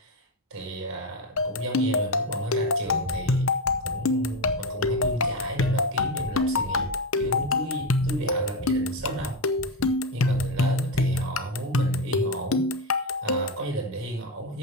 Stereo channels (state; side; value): normal; both; correlation 0.12